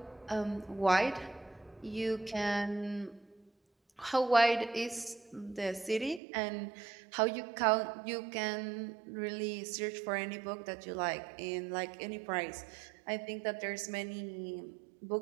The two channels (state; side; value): drops out; left; at 6.2 s